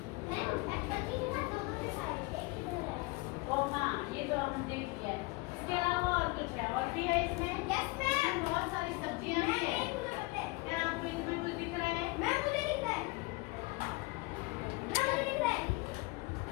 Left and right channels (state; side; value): quieter; right; 24.3 dB